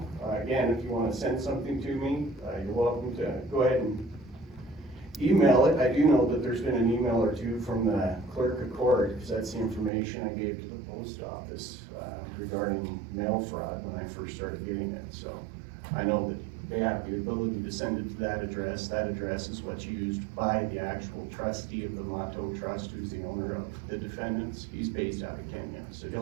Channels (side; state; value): left; drops out; at 9.9 s